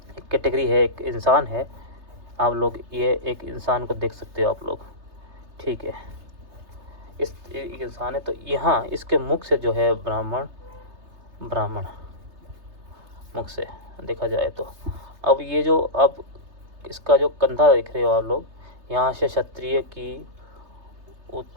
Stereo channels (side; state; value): left; late; 3.3 ms